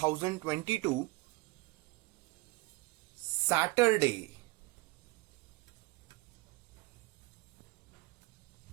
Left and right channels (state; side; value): quieter; left; 23.4 dB